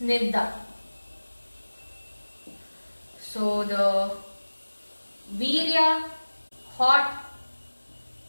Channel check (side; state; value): both; inverted; correlation -1.00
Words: So the virya, hot,